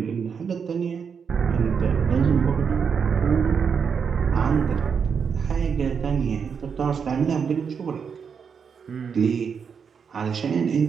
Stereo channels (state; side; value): quieter; left; 6.5 dB